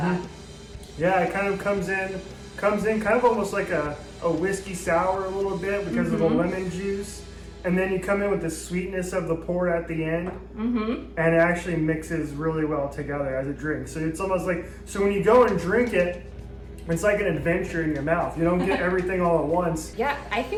Yeah, it kind of comes in kind of almost like a whiskey sour a little bit because of the lemon juice. And then you come in with the sweetness of the port at the end. And it actually mixes really well together as a drink. So it's almost like, so when you go and drink it, it's like an adventure in your mouth. You don't get everything all at once. Yeah, I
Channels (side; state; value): both; identical; correlation 1.00